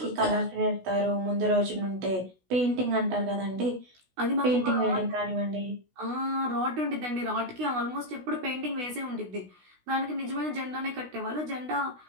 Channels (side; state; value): left; late; 16 ms